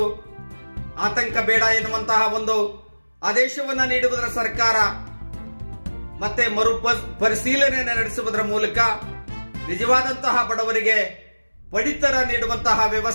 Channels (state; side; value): inverted; both; correlation -1.00